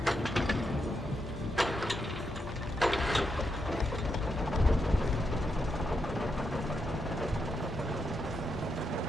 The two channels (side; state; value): both; normal; correlation 0.83